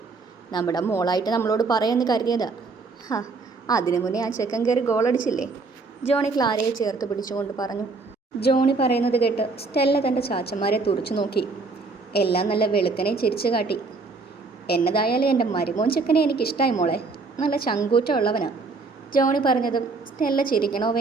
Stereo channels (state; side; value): quieter; left; 4.0 dB